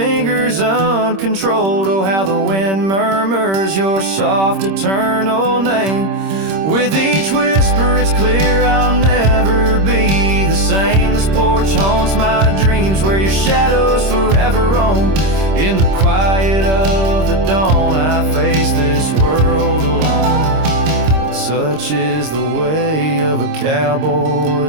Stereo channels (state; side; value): late; left; 26 ms